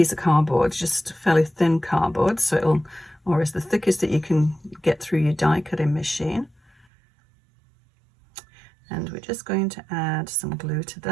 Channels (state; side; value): drops out; left; at 6.9 s